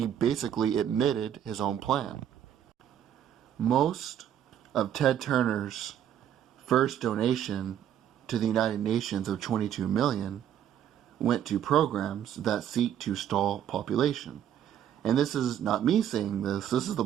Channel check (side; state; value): left; quieter; 10.2 dB